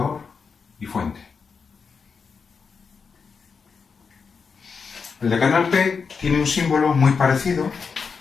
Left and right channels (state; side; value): quieter; right; 5.5 dB